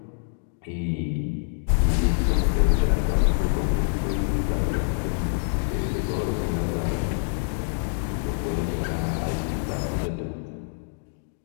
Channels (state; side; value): silent; right; digital silence